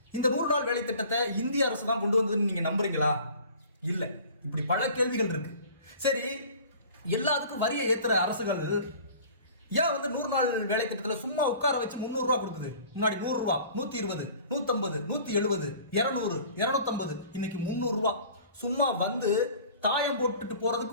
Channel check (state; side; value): inverted; both; correlation -0.46